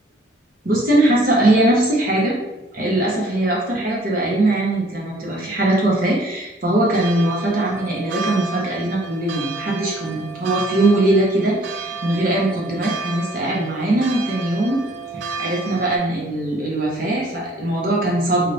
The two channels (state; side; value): normal; both; correlation 0.58